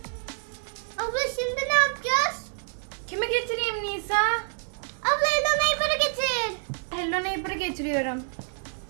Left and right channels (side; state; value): left; silent; 60 dB below the other